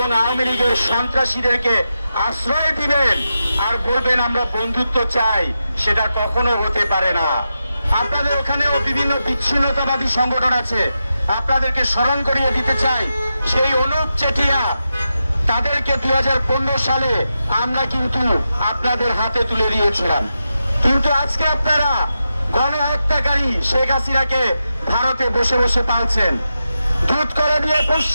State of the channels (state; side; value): inverted; both; correlation -0.89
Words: আওয়ামী লীগের সন্ত্রাসীদেরকে আশ্রয় দিবেন আর বলবেন আমরা বন্ধুত্ব চাই, সেটা কখনো হতে পারে না। আপনাদের ওখানেও বিভিন্ন বিচ্ছিন্নতাবাদী সংগঠন আছে, আপনাদেরকে স্মরণ করিয়ে দিতে চাই, সেই অনুপ চেটিয়া তাদেরকে 2015 সালে আমরা কিন্তু আপনাদের হাতে তুলে দিয়েছিলাম। কিন্তু আজকে আপনারা গণহত্যাকারী শেখ হাসিনাকে ভারতে বসে বসে পালছেন, দুধ করে দিয়ে